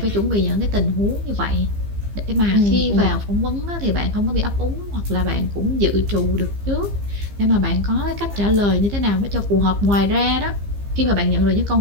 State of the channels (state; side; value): late; left; 15 ms